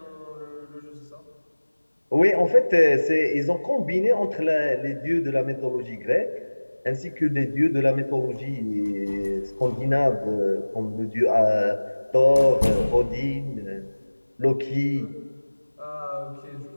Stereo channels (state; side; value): inverted; both; correlation -1.00